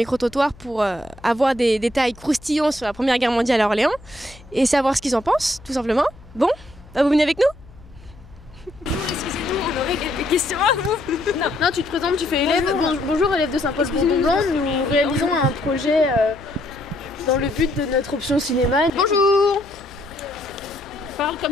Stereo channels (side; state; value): left; noise; hum, 22 dB below the sound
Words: pour avoir des détails croustillants sur la Première Guerre mondiale à Orléans et savoir ce qu'ils en pensent, tout simplement. Bon, bah vous venez avec nous? Bonjour, excusez-nous, on aurait quelques questions à vous. Non, tu te présentes, tu fais élève. Bonjour, élève de Saint-Paul-Bourdon. Nous réalisons un projet dans le but de notre option cinéma. Bonjour. Parle